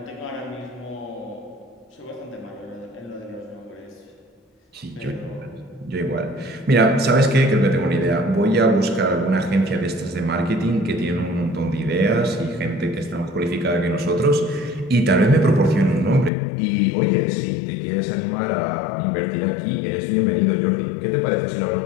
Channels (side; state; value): right; drops out; at 16.3 s